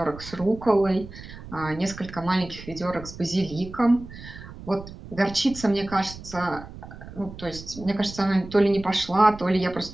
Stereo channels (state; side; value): noise; right; rumble, 14 dB below the sound